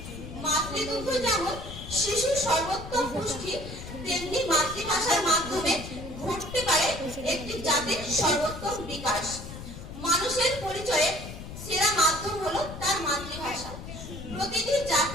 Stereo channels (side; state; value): left; noise; rumble, 11 dB below the sound